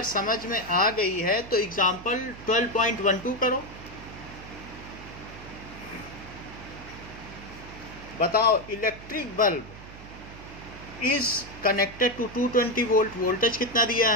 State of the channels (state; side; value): noise; right; hum, 16 dB below the sound